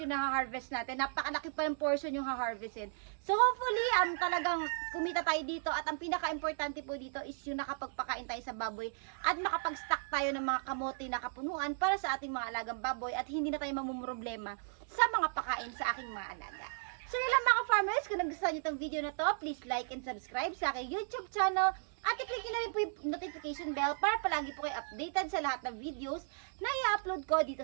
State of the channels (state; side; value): silent; left; digital silence